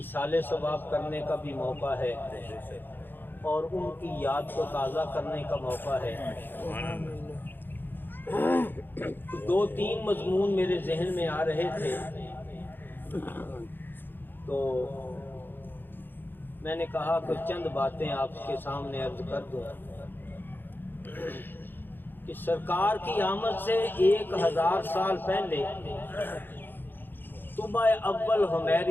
ثواب کرنے کا بھی موقع ہے اور ان کی یاد کو تازہ کرنے کا موقع ہے۔ 2-3 مضمون میرے ذہن میں آ رہے تھے، تو میں نے کہا کہ چند باتیں آپ کے سامنے عرض کر دوں کہ سرکار کی آمد سے 1000 سال پہلے طبع اول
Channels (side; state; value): right; late; 0.096 ms